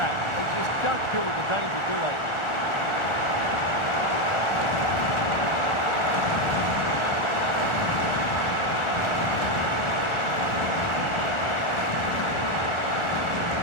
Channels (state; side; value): late; right; 1.4 ms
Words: that. They just don't deal with the danger, do they?